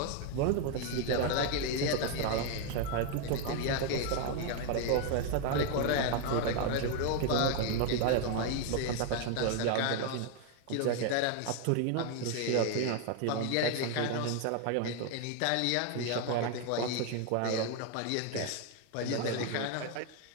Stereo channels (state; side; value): different; both; correlation 0.01